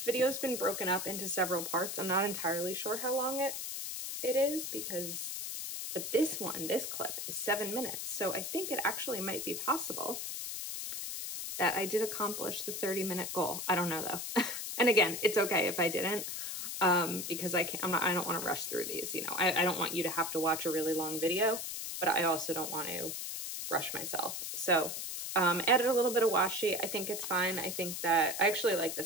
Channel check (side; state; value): left; noise; hiss, 5 dB below the sound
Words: video's been broken up into several parts, I'm not entirely sure how long it is because, but this clip is 7 minutes. So I think it actually might be possible that I did accomplish the 30-minute goal. I don't know though. And again, it's okay if I didn't, because I don't want to rush through these. You know, I don't want you to have to watch a really long video, but I also don't want to rush myself. So added a little bit of washi. I think it's fine. I think that I actually like